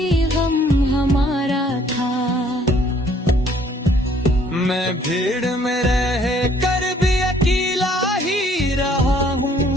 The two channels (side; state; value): both; normal; correlation 0.61